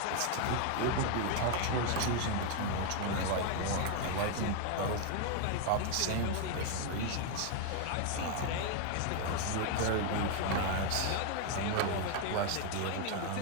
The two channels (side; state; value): both; different; correlation 0.00